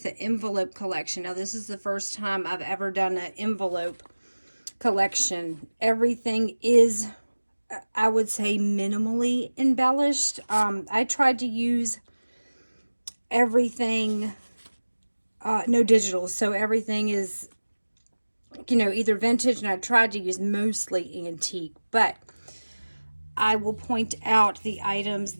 the envelope collection. Now this is the first time I've ever done an envelope collection. Everything is, I would say, minimally embellished. I tried to use everything no digital, so everything is, either vintage, and I tried to use mostly antique, but I will point out the items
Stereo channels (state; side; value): inverted; both; correlation -1.00